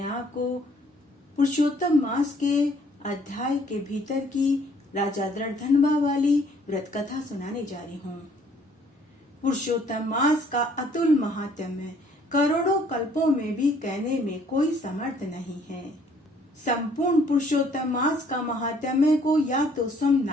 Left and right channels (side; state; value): both; normal; correlation 0.61